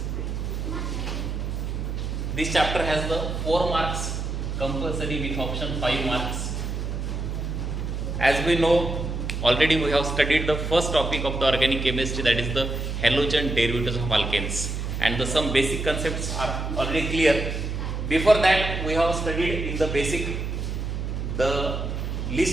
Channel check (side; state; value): right; noise; hum, 3 dB below the sound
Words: This chapter has the 4 marks compulsory with option 5 marks. As we know, already we have studied the first topic of the organic chemistry, that is the halogen derivatives of alkanes, and some basic concepts are already clear. Before that, we have studied in the basic the